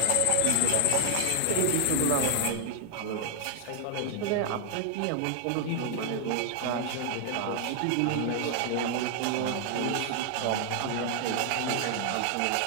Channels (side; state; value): both; different; correlation 0.00